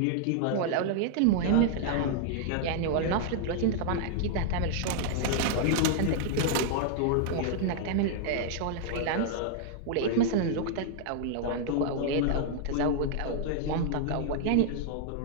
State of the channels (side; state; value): both; different; correlation -0.01